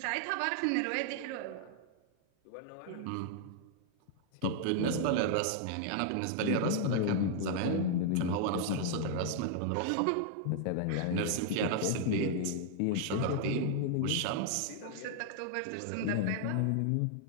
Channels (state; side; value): different; both; correlation 0.00